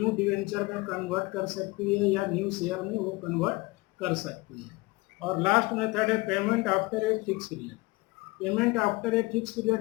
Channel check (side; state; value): right; quieter; 23.1 dB